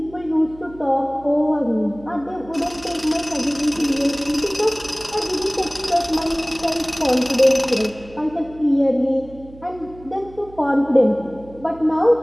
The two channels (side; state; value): right; noise; hum, 20 dB below the sound